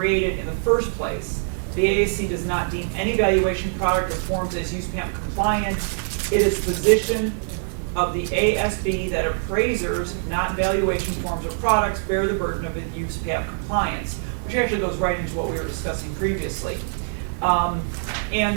in the first place? The the AAC does not deem any valuation product or forms as USPAP compliant. It is the position of the ASB that appraisers, not valuation forms or products, bear the burden of USPAP compliance, which actually goes right into what we were discussing previously.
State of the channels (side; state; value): left; silent; digital silence